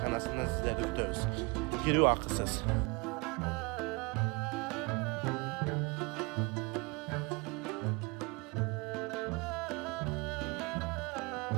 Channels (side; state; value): left; quieter; 27.9 dB